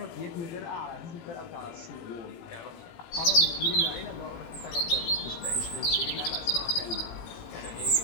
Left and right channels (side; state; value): right; late; 18 ms